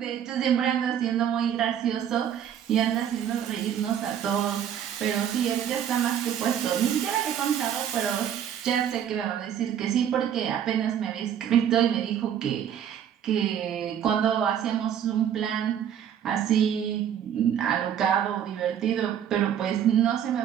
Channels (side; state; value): left; quieter; 9.4 dB